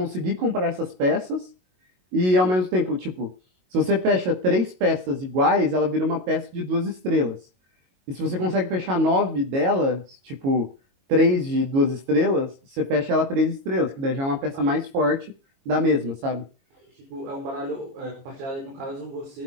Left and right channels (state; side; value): late; left; 22 ms